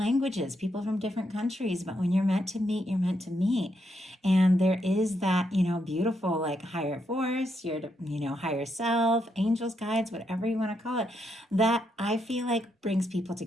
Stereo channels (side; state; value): both; normal; correlation 0.79